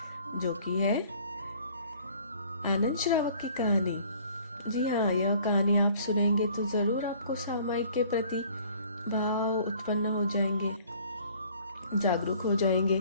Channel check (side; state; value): both; inverted; correlation -0.54